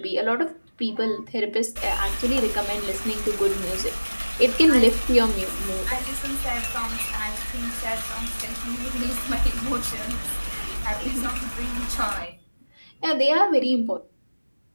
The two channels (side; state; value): both; inverted; correlation -1.00